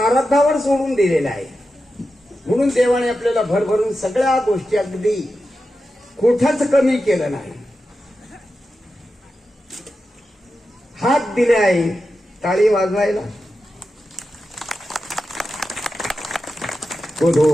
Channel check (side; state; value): both; normal; correlation 0.90